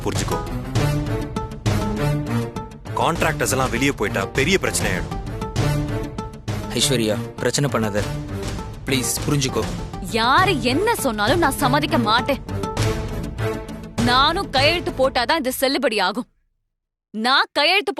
புரிஞ்சுக்கோ. கான்ட்ராக்டர்ஸ் எல்லாம் வெளியே போயிட்டா பெரிய பிரச்சனை ஆயிடும். ஐஸ்வர்யா, பிரச்சனை பண்ணாத, ப்ளீஸ் புரிஞ்சுக்கோ. யாரு என்ன சொன்னாலும் நான் சம்மதிக்க மாட்டேன். நானும் கையெழுத்து போட்டாதான் இது செல்லுபடி ஆகும். நான் கையெழுத்து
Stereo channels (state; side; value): identical; both; correlation 1.00